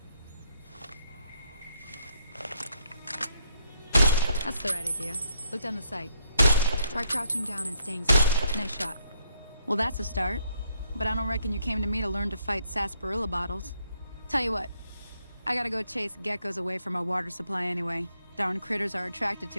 That's the right idea. Look down the sight. Try crouching down and staying still. Nice shot. Well, that's a start. But I don't reckon you came to me to learn to fight sarsaparilla bottles. Tell you what, I gotta go chase geckos away from our water supply anyway. Darn critters are attracted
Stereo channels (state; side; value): inverted; both; correlation -0.72